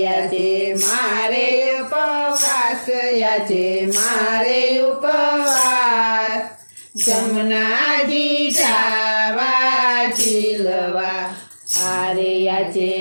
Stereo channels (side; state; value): both; inverted; correlation -1.00